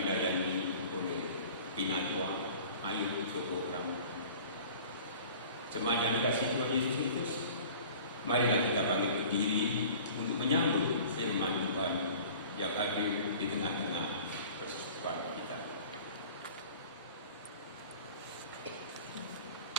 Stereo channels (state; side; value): inverted; both; correlation -0.45